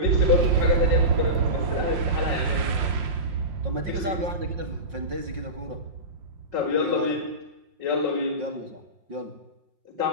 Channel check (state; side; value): late; left; 5.7 ms